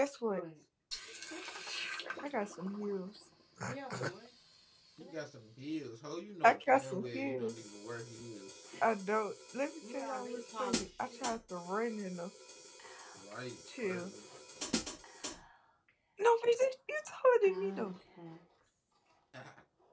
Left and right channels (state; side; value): identical; both; correlation 1.00